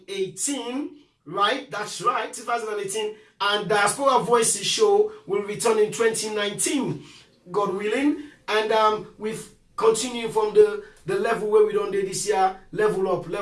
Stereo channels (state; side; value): identical; both; correlation 1.00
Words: right? That's right, 2018. And Diaspora Voices show will return in 2019, God willing. And we've continued from the level where we done this year, level